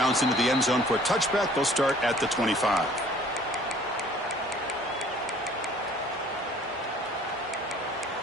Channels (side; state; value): both; normal; correlation 0.53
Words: into the end zone for a touchback. They'll start at the 25.